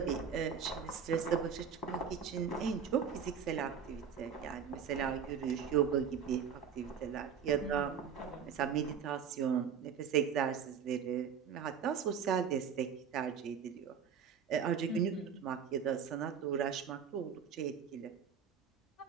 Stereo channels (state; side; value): quieter; left; 7.3 dB